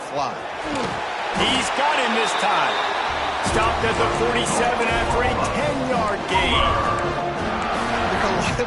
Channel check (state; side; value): identical; both; correlation 1.00